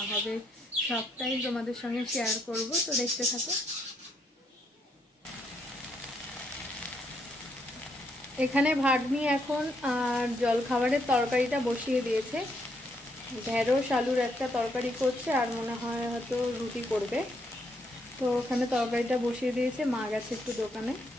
হবে সবটাই তোমাদের সঙ্গে শেয়ার করব, তো দেখতে থাকো। এখানে ভাগ্নি এখন আর জল খাবারের তরকারিটা বসিয়ে দিয়েছে। ঢেঁড়স আলুর একটা তরকারি করছে, আর মনে হয় হয়তো রুটি করবে। তো ওখানে তরকারিটা বসিয়ে দিয়েছে, মা গেছে একটু দোকানে।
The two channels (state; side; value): normal; both; correlation 0.75